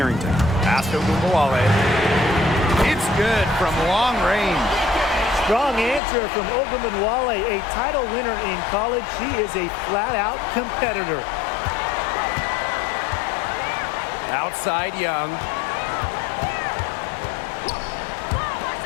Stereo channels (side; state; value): right; drops out; at 6.0 s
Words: Pass to Ogunbowale. It's good from long range. Strong answer from Ogunbowale, a title winner in college. She is a flat-out competitor. Outside Young.